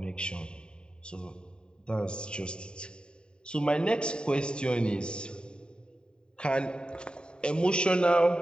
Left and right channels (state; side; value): late; right; 0.049 ms